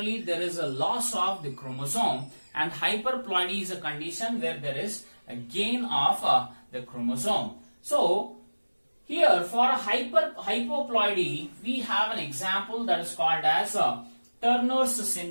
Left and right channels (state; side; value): inverted; both; correlation -1.00